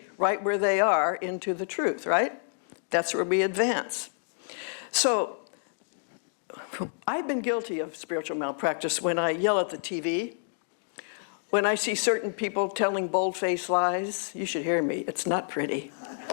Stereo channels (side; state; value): right; silent; digital silence